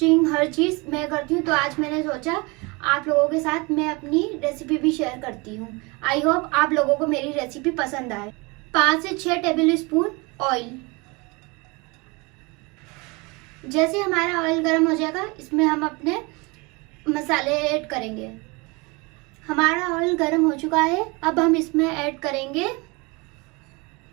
हर चीज़ मैं करती हूँ। तो आज मैंने सोचा आप लोगों के साथ मैं अपनी रेसिपी भी शेयर करती हूँ। आई होप आप लोगों को मेरी रेसिपी पसंद आए। 5 से 6 टेबल स्पून ऑयल। जैसे हमारा ऑयल गर्म हो जाएगा इसमें हम अपने मसाले ऐड करेंगे। हमारा ऑयल गर्म हो चुका है, अब हम इसमें ऐड करेंगे,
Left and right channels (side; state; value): left; quieter; 27.1 dB